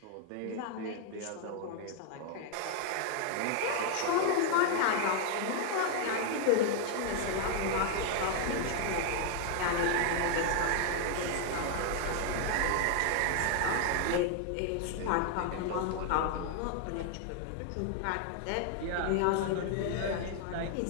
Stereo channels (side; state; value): both; different; correlation 0.00